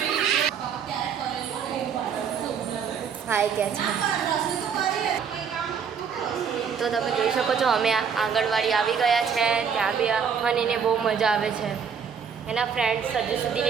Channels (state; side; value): quieter; left; 6.8 dB